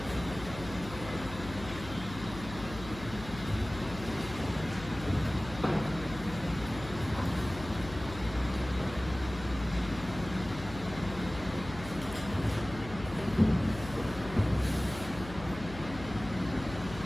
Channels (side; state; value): left; noise; hum, 13 dB below the sound